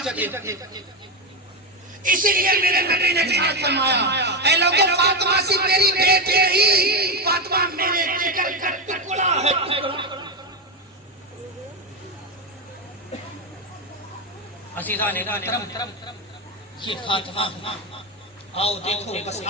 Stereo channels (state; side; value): normal; both; correlation 0.10